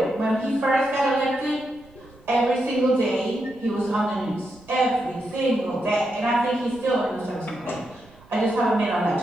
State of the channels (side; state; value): right; noise; rumble, 26 dB below the sound